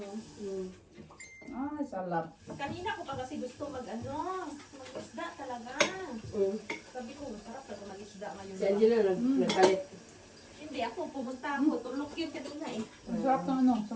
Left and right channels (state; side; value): identical; both; correlation 1.00